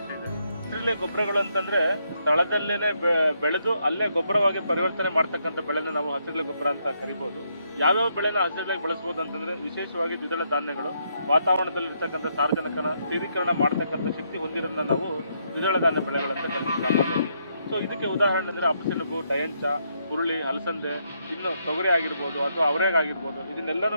ಇದೆ. ಹಸಿರೆಲೆ ಗೊಬ್ಬರಗಳು ಅಂತಂದ್ರೆ ಸ್ಥಳದಲ್ಲೇನೆ ಬೆಳೆದು ಅಲ್ಲೇ ಗೊಬ್ಬರವಾಗಿ ಪರಿವರ್ತನೆ ಮಾಡ್ತಕ್ಕಂಥ ಬೆಳೆನ ನಾವು ಹಸಿರೆಲೆ ಗೊಬ್ಬರ ಅಂತ ಕರಿಬಹುದು. ಯಾವ್ಯಾವ ಬೆಳೆನ ಹಸಿರೆಲೆಗೆ ಬಳಸಬಹುದು ಅಂತಂದ್ರೆ, ವಿಶೇಷವಾಗಿ ದ್ವಿದಳ ಧಾನ್ಯಗಳು ವಾತಾವರಣದಲ್ಲಿ ಇರ್ತಕ್ಕಂಥ ಸಾರಜನಕನ ಸ್ಥಿರೀಕರಣ ಮಾಡ್ತಕ್ಕಂಥ ಶಕ್ತಿ ಹೊಂದಿರೋದನ್ನ ನಾವು ದ್ವಿದಳ ಧಾನ್ಯ ಬೆಳೆಗಳಂತ ಕರಿತೀವಿ. ಸೊ ಇದಕ್ಕೆ ಉದಾಹರಣೆ ಅಂದರೆ ಅಪಸೆಣಬು, ಡಯಂಚ, ಹುರುಳಿ, ಅಲಸಂದೆ, ಇನ್ನು ತೊಗರಿ ಆಗಿರ್ಬೋದು ಅಥವಾ ಅವರೆಗಾಗಿರ್ಬೋದು, ಇದನ್ನೆಲ್ಲನೂ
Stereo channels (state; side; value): inverted; both; correlation -0.76